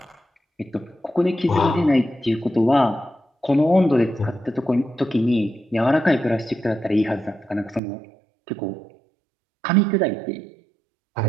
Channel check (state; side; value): drops out; left; at 7.8 s